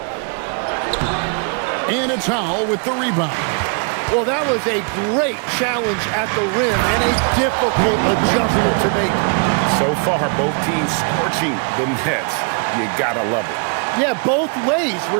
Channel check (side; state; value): left; quieter; 39.8 dB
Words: And it's Howell with the rebound. Well, that was a great challenge at the rim and a difficult adjustment to make. So far, both teams scorching the Nets. You gotta love it. Yeah, both ways.